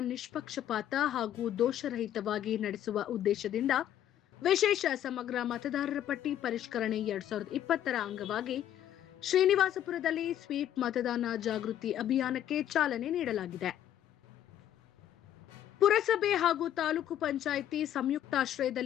ನಿಷ್ಪಕ್ಷಪಾತ ಹಾಗೂ ದೋಷರಹಿತವಾಗಿ ನಡೆಸುವ ಉದ್ದೇಶದಿಂದ ವಿಶೇಷ ಸಮಗ್ರ ಮತದಾರರ ಪಟ್ಟಿ ಪರಿಷ್ಕರಣೆ 2020ರ ಅಂಗವಾಗಿ ಶ್ರೀನಿವಾಸಪುರದಲ್ಲಿ ಸ್ವೀಪ್ ಮತದಾನ ಜಾಗೃತಿ ಅಭಿಯಾನಕ್ಕೆ ಚಾಲನೆ ನೀಡಲಾಗಿದೆ. ಪುರಸಭೆ ಹಾಗೂ ತಾಲೂಕು ಪಂಚಾಯಿತಿ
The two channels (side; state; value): right; quieter; 11.2 dB